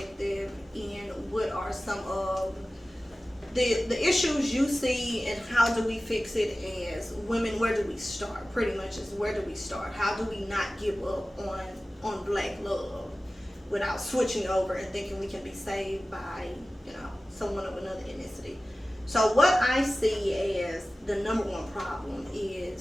in what are some of the issues you see, and how do we fix it as women. Where do we start? Pretty much is, where do we start? How do we not give up on black love without switching over and thinking we can be saved by, someone of another ethnicity? So what I see as the number one problem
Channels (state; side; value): normal; both; correlation 0.96